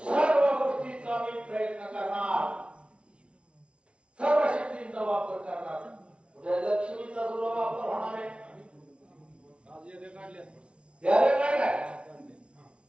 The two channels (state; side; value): late; left; 0.059 ms